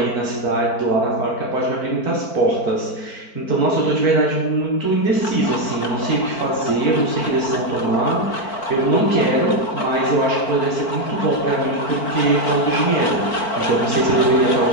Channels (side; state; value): right; late; 4.5 ms